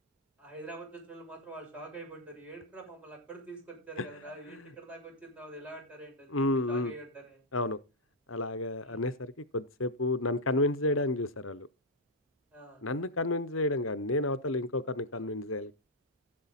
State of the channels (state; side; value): normal; both; correlation -0.05